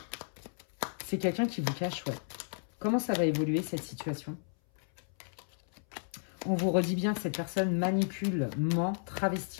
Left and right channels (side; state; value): right; silent; 56 dB below the other